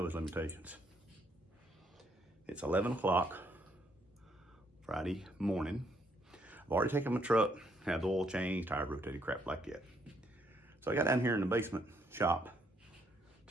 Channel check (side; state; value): both; normal; correlation 0.71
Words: his limitations. It's 11 o'clock Friday morning. I've already taken my truck, had the oil changed, tire rotated, crap like that. So I got down here in the basement shop